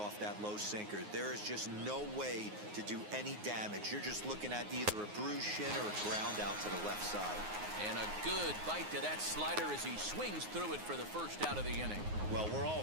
that low sinker. There is just no way to do any damage. You're just looking at either a bruised shin or a ground out to the left side. And a good bite to that slider as he swings through it for the first out of the inning. Well, we're all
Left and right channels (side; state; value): left; late; 9.6 ms